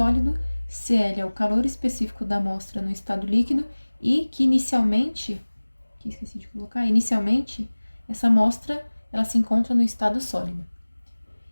CL é o calor específico da amostra no estado líquido e que inicialmente essa amostra ela se encontra no estado sólido.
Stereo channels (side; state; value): both; inverted; correlation -1.00